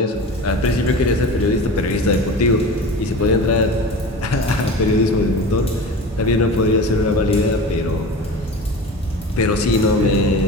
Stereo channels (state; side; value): normal; both; correlation 0.33